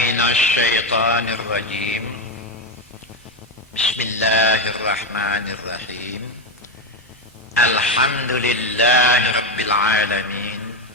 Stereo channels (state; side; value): normal; both; correlation 0.10